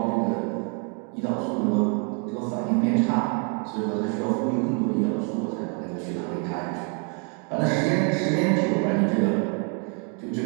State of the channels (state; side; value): quieter; left; 38.2 dB